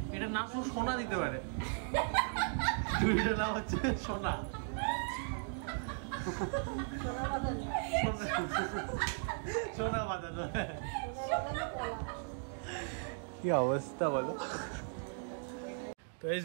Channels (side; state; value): left; silent; 53 dB below the other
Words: এটার নাম শুধু সোনা দিতে পারে, চুড়িটার নাম হচ্ছে সোনা। সোনা বাঁধানো। কি অবস্থা বলো। তো এস